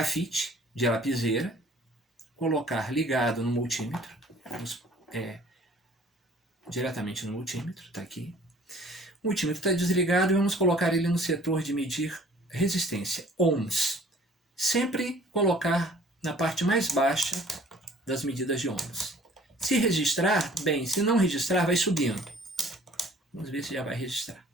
de lapiseira, colocar ligado no multímetro, diretamente no multímetro, está aqui. O multímetro está desligado e vamos colocar ele no setor de medir resistência, ohms. Sempre colocar na parte mais baixa das medidas de ohms. Se registrar, bem, se não registrar, vai subindo. Vamos ver se já vai registrar.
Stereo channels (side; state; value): both; normal; correlation 0.53